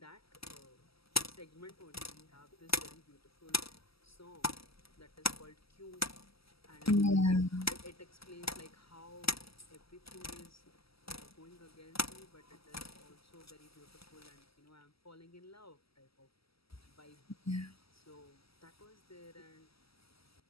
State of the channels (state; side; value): late; right; 0.76 ms